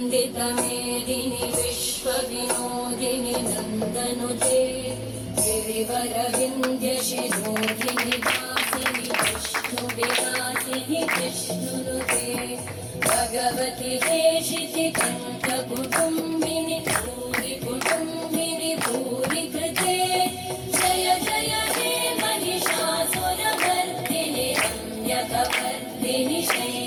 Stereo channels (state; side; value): identical; both; correlation 1.00